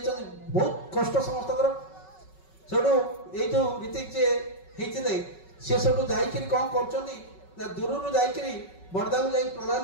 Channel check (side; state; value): right; late; 5.3 ms